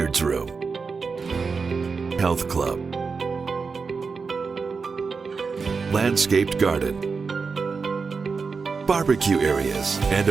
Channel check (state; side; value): quieter; left; 5.0 dB